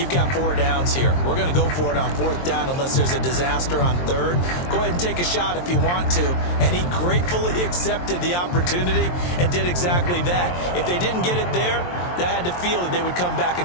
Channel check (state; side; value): late; right; 23 ms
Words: got 4 downs here. We're going to go for it on 4th down unless there's a disaster on 3rd. Go ahead and take a shot if you want to. And he gratefully accepted the opportunity and did exactly that. If they didn't get it there, that had the feel that they would come back